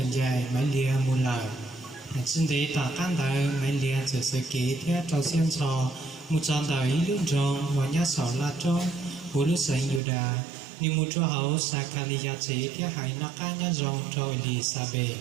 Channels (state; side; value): drops out; left; at 10.0 s